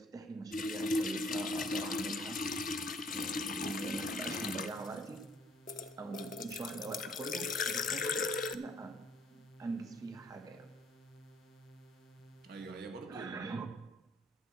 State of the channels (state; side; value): normal; both; correlation 0.62